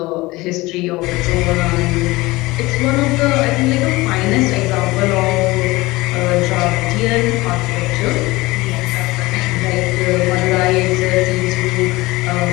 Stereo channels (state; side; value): quieter; right; 20.8 dB